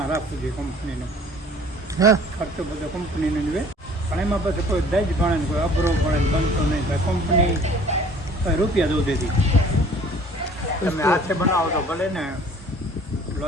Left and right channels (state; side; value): normal; both; correlation 0.51